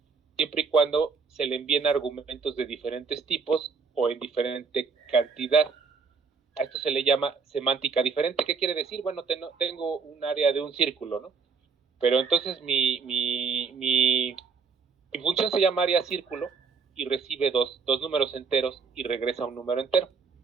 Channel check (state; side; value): quieter; left; 5.2 dB